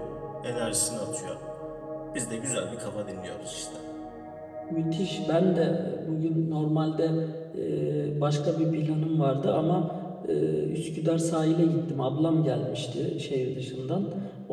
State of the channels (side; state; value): both; identical; correlation 1.00